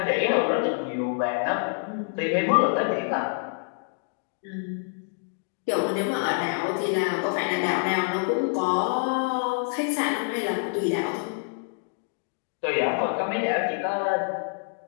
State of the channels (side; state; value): right; silent; 60 dB below the other